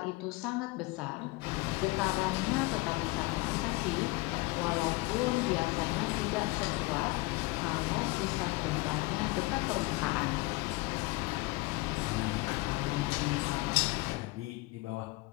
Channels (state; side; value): quieter; right; 23.2 dB